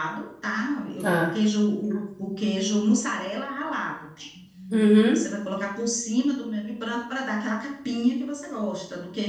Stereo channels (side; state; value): both; identical; correlation 1.00